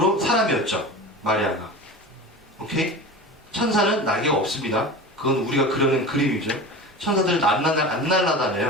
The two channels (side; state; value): both; normal; correlation 0.32